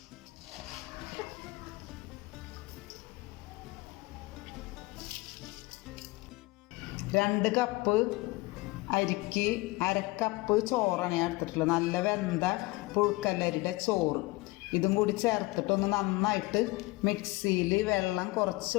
രണ്ട് കപ്പ് അരിക്ക് 1/2 കപ്പ് ചോറാണ് ഞാൻ എടുത്തിട്ടുള്ളത്. നല്ല വെന്ത പുഴുക്കല്ലരിയുടെ ചോറ്. ഇതും കൂടി ചേർത്തിട്ടൊന്ന് നന്നായിട്ട് മിക്സിയിൽ വെള്ളം കുറച്ച്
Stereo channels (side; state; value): right; quieter; 22.4 dB